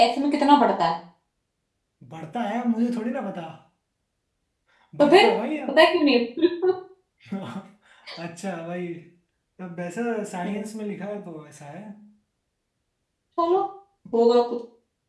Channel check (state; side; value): identical; both; correlation 1.00